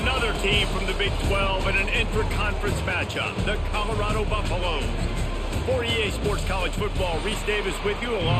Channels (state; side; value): identical; both; correlation 1.00